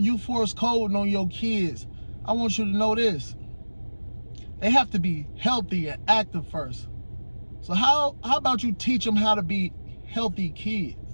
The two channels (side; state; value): both; inverted; correlation -1.00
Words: force coding on your kids, I want you to know this. They have to be healthy and active first. So how about you teach them how to be healthy kids?